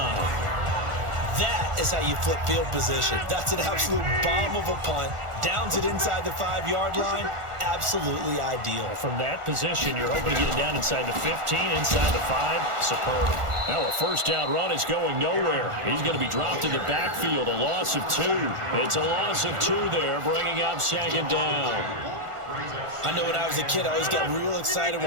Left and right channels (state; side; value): late; left; 1.4 ms